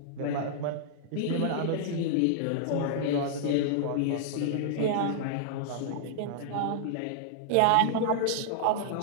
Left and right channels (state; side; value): different; both; correlation -0.01